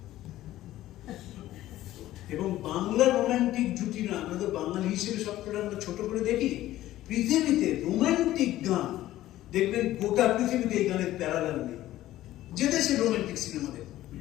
এবং বাংলা রোমান্টিক জুটি না, আমরা তো বাঙালি হিসেবে সবকটা আমরা ছোট করে দেখি। পৃথিবীতে রোমান্টিক গান দেখবেন গোটা পৃথিবীতে এই গানের প্যারালাল নেই। যে দেশে রোমান্টিক সিনেমা দেখুন,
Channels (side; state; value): right; quieter; 14.7 dB